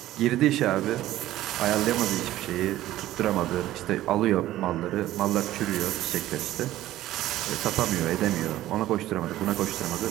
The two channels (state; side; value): quieter; left; 14.7 dB